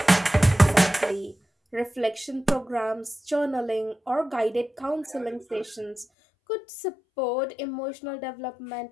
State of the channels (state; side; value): drops out; right; at 6.1 s